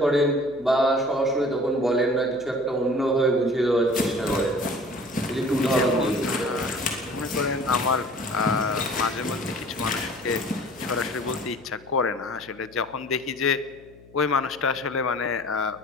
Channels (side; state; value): left; noise; hum, 24 dB below the sound